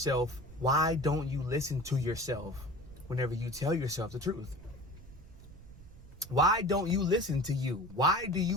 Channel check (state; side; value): noise; right; rumble, 18 dB below the sound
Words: why don't you listen to yourself whenever you tell yourself the truth? Why don't you listen to you? Why do